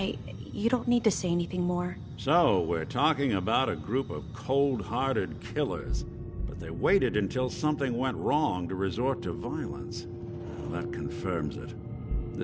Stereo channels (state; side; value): identical; both; correlation 1.00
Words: You don't need to say anything more. So, we're talking about a group of cold-hearted killers, but they waited until something went wrong to resort to violence. Well, that confirms it.